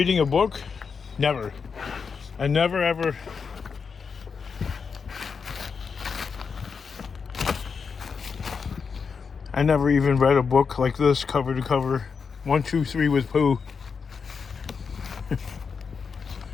a book? Never. I never ever. I never even read a book like this, cover to cover. 1, 2, 3 with Pooh.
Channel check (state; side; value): quieter; right; 5.7 dB